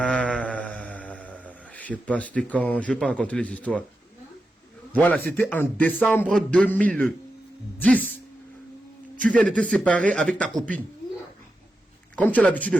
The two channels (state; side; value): normal; both; correlation 0.89